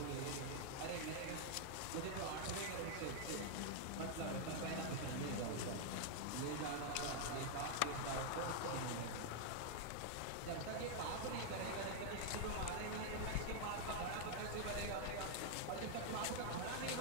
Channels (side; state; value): both; different; correlation 0.00